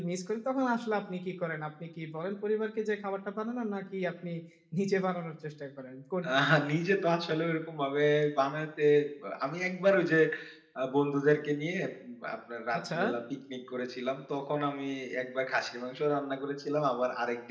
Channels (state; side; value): identical; both; correlation 1.00